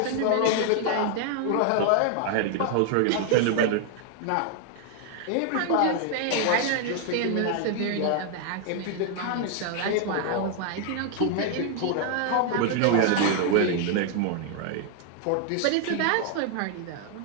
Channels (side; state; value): both; different; correlation 0.00